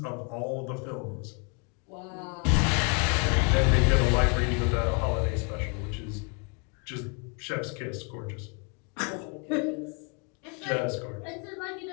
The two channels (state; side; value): quieter; right; 36.5 dB